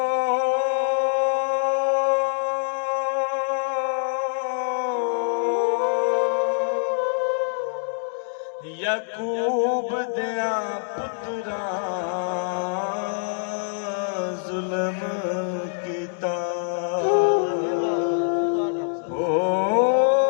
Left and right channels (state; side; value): silent; right; 62 dB below the other